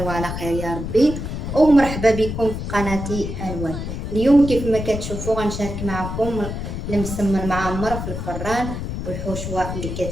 وعلى خير يا ربي. ومرحبا بكم في قناتي الوان. اليوم كيف ما كتشوفوا غنشارك معكم المسمن معمر في الفران والحشوه اللي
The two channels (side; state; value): left; noise; rumble, 5 dB below the sound